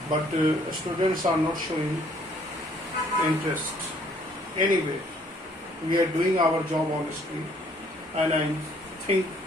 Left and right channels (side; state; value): both; normal; correlation 0.62